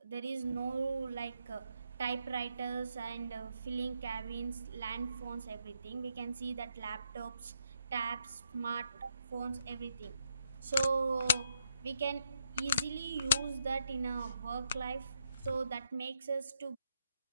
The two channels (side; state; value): both; inverted; correlation -0.79